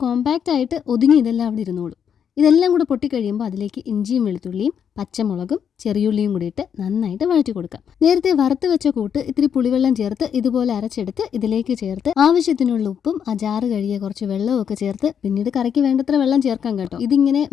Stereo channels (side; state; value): right; quieter; 8.0 dB